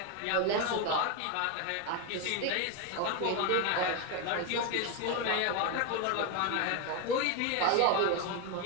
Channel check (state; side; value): different; both; correlation 0.02